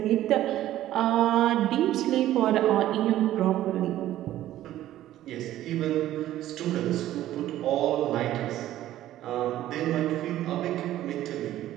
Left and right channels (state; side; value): quieter; left; 13.6 dB